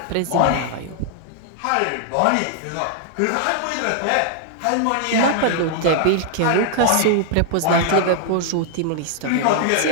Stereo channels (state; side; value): different; both; correlation 0.00